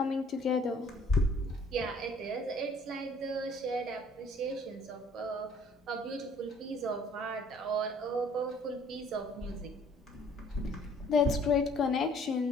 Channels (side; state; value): both; normal; correlation 0.57